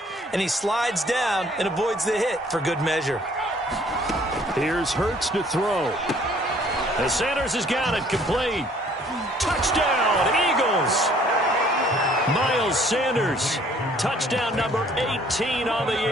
And he slides down and avoids the hit for good measure. Here's Hurts to throw. The Sanders has got it complete. Touchdown, Eagles. Miles Sanders. Touchdown number 18 on the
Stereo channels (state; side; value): normal; both; correlation 0.58